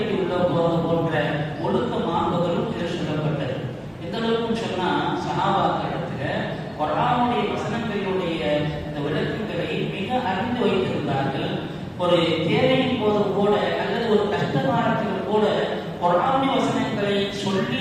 உள்ள போவது போன்ற ஒழுக்க மாண்புகளும் இதில் சொல்லப்பட்டது. எந்த அளவுக்கு சொன்னா, சஹாபாக்களிடத்துல குர்ஆனுடைய வசனங்களுடைய இந்த விளக்கங்களை மிக அறிந்து வைத்திருந்தார்கள். ஒரு தேவையின் போது கூட அல்லது ஒரு கஷ்ட காலத்தில் கூட குர்ஆனுடைய வசனங்களை சொல்லி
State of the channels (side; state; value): both; identical; correlation 1.00